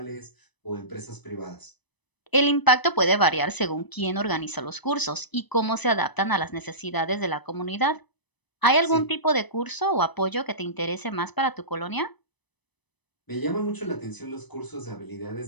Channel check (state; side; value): late; right; 1.0 ms